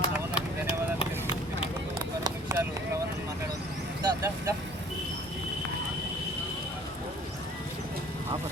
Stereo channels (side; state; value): both; normal; correlation 0.52